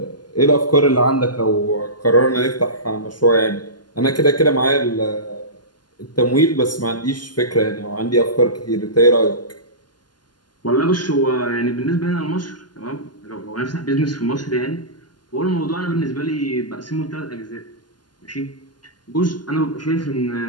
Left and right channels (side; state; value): right; late; 0.71 ms